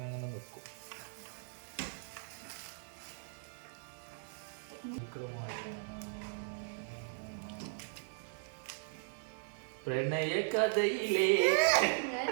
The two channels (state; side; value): silent; left; 52 dB below the other